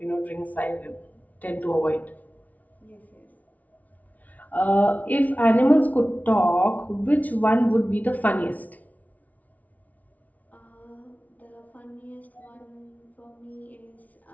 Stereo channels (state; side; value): late; right; 0.073 ms